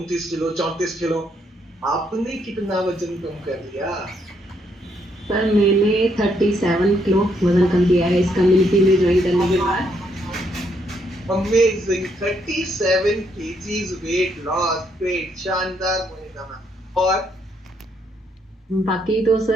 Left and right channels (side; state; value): both; normal; correlation 0.73